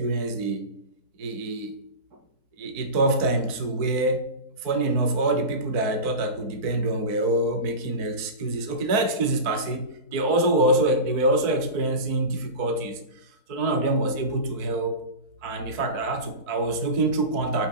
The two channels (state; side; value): late; left; 4.5 ms